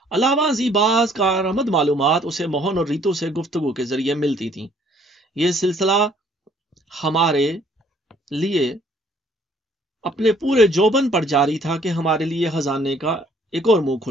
علاوہ ازیں بعض کارآمد معلومات اسے موہن اور ریتو سے گفتگو کے ذریعے ملتی تھیں۔ یہ سلسلہ ہمارے لیے اپنے پورے جوبن پر جاری تھا کہ ہمارے لیے خزانے کا ایک اور منہ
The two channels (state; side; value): normal; both; correlation 0.62